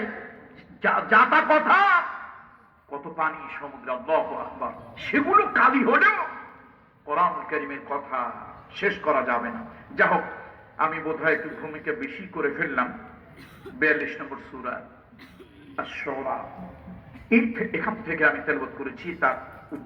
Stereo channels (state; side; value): identical; both; correlation 1.00